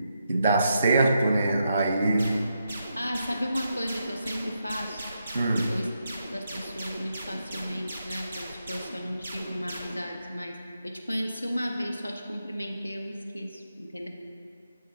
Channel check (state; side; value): inverted; both; correlation -0.82